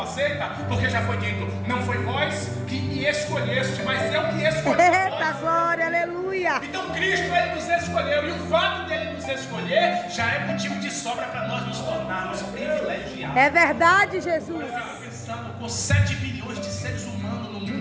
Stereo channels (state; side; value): identical; both; correlation 1.00